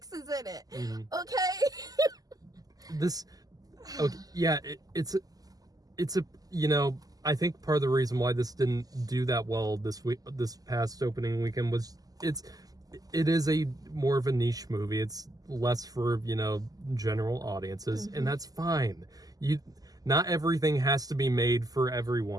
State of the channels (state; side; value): late; left; 0.18 ms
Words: is in it. Okay? It's a, you know, I think part of the reason why this didn't do that well this past opening weekend was it is a more of a niche movie. It's less for, you know, general audiences, and that's fine. Not everything has to be made for